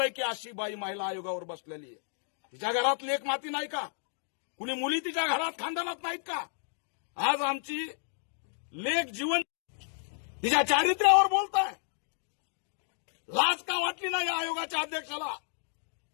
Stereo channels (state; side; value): silent; right; 57 dB below the other